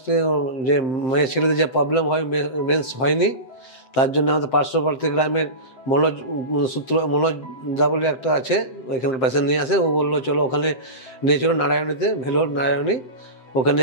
থেকে যে মেয়ে ছেলেদের যে প্রবলেম হয়, মেন্স হয়নি, তার জন্য আমাদের পার্শ্ববর্তী গ্রামের মনোজ দা বলে একটা আছে, ওইখানে পেশেন্ট নিয়ে আসে। ও বললো চলো ওখানে নিয়ে চলো নারায়ণীতে, ভেলোর নারায়ণী। ওখানে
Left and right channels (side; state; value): right; late; 7.7 ms